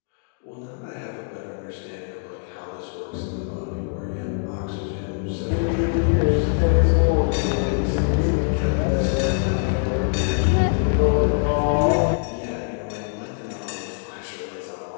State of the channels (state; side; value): silent; right; 63 dB below the other